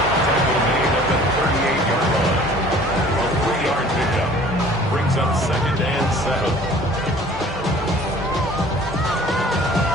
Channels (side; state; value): both; normal; correlation 0.50